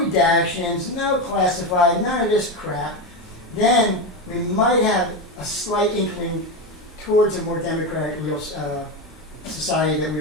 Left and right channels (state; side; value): normal; both; correlation 0.15